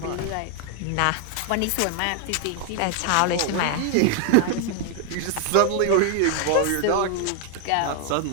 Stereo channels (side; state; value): both; different; correlation 0.00